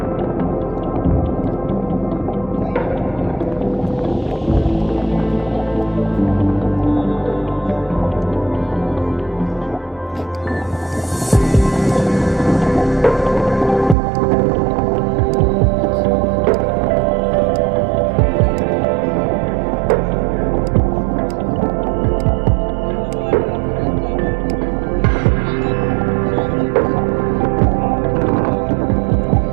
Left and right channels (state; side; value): drops out; left; at 14.0 s